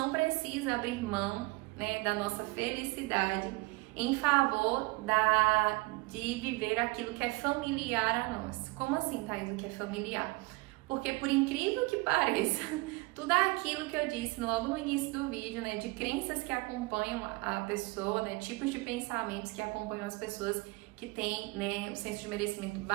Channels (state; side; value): quieter; left; 24.8 dB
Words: precisa abrir mão, né, da nossa felicidade em favor de viver aquilo que é familiar a nós. Como assim, Thaís, o que é familiar? Porque por incrível que pareça, tudo aquilo que eu disse logo no início do vídeo, né, de crenças que acompanham a pessoa, né, tipos de pensamentos que acompanham as pessoas que têm, né, o senso de merecimento